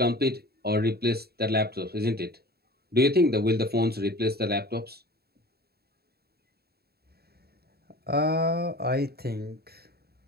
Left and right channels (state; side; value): late; left; 0.46 ms